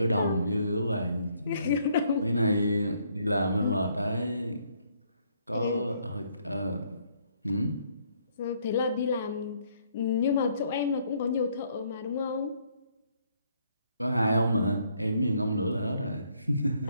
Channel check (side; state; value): both; inverted; correlation -0.69